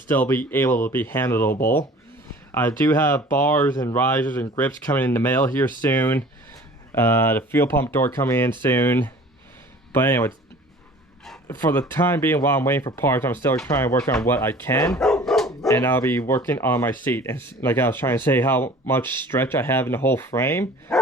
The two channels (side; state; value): both; normal; correlation 0.46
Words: be able to be handleable. I do have bars and risers and grips coming in the mail here soon. The fuel pump door coming in soon. But anyway, for the time being, while I'm waiting for parts, I'm still trying to work on what I can. And I'll be working on my seat. And like I was trying to say, how much stretch I have in the whole frame.